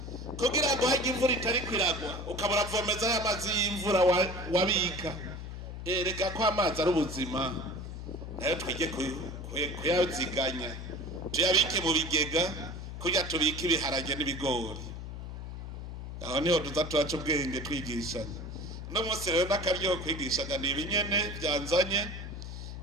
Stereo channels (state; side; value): noise; left; hum, 8 dB below the sound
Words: kugira ngo hajya imvura itari kwiragwa ukabura vomeza y'amazi y'imvura wabika reka ko amazi ari ubuzima nayo twige kuyaziganya tuyabike mu bigega kugira tubike ibiharage n'ibigori aho niho tuza turaca ubwenge twigishanya no munsi rero n'akaryo kwigishanya ni ibinyene byanzanye